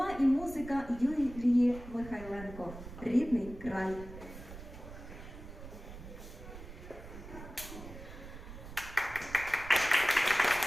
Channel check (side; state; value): right; noise; rumble, 13 dB below the sound